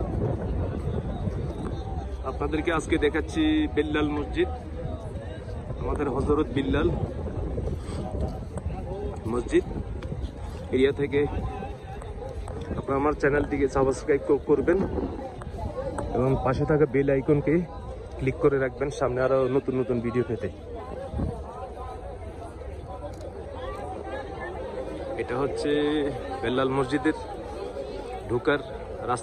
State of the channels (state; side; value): identical; both; correlation 1.00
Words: আপনাদেরকে আজকে দেখাচ্ছি বিল্লাল মসজিদ, আমাদের হযরত বিল্লাল মসজিদ এরিয়া থেকে। আপনারা আমার চ্যানেলটিকে সাবস্ক্রাইব করবেন এবং পাশে থাকা বেল আইকনকে ক্লিক করে রাখবেন সামনে আরো নতুন নতুন ভিডিও পেতে। এটা হচ্ছে বিল্লাল মসজিদের ঢোকার